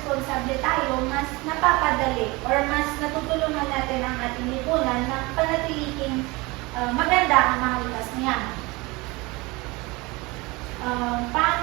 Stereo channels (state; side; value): quieter; left; 23.8 dB